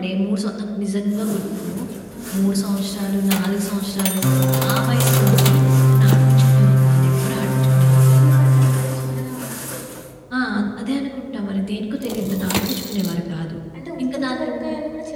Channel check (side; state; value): both; identical; correlation 1.00